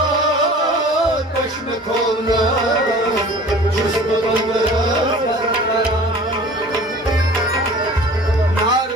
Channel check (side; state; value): both; normal; correlation 0.44